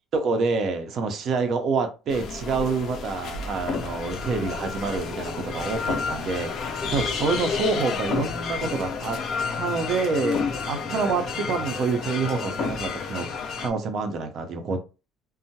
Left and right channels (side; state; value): both; normal; correlation 0.58